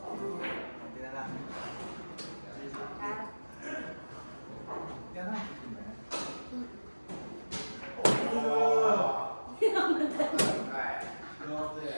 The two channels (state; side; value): inverted; both; correlation -1.00